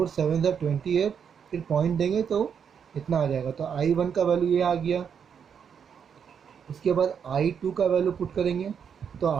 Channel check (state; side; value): quieter; left; 7.4 dB